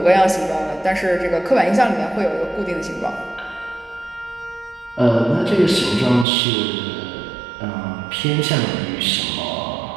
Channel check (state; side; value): drops out; left; at 6.2 s